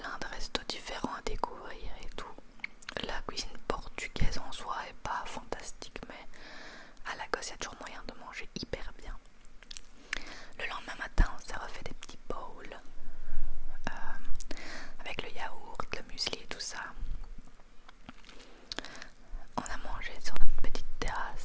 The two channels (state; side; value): identical; both; correlation 1.00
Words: de restos différents à découvrir et tout. La cuisine portugaise en soi est pas fantastique, mais à Lagos il y a toujours moyen de manger hyper bien. Le lendemain matin, on s'est refait des petits bowls avec le yaourt, le muesli et tout ça. On a mangé sur notre petite